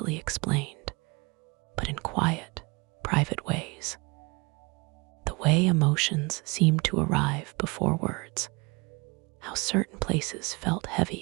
explained, but in quiet, private ways. The way emotions seemed to arrive before words, how certain places felt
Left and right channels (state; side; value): quieter; left; 27.7 dB